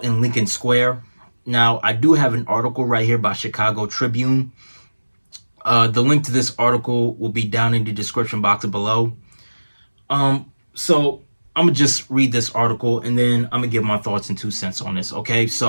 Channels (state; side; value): inverted; both; correlation -1.00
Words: in Lincoln Square. Now, I do have an article right here by Chicago Tribune. The link to this article will be down in the description box below. So I'm gonna just read this article and then I'm gonna give my thoughts and 2 cents on this. Okay,